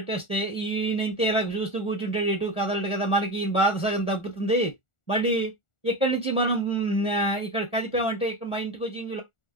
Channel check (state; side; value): late; right; 1.4 ms